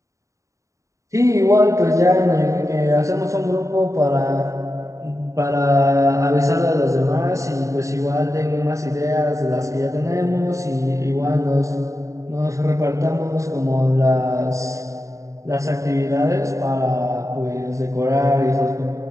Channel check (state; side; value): late; left; 0.15 ms